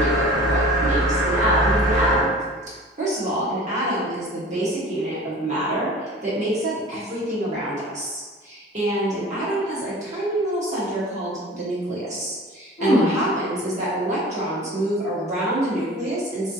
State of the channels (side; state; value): both; normal; correlation 0.41